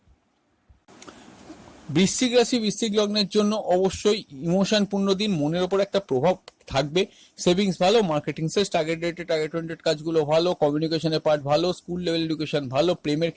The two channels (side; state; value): both; identical; correlation 1.00